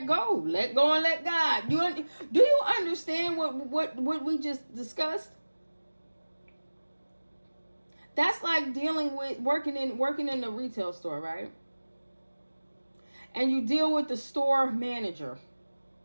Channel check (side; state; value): both; inverted; correlation -1.00